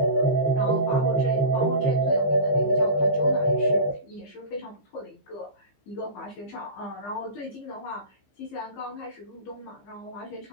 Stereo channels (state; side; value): late; right; 15 ms